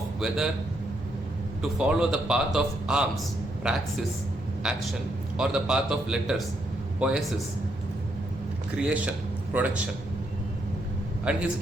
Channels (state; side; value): normal; both; correlation 0.77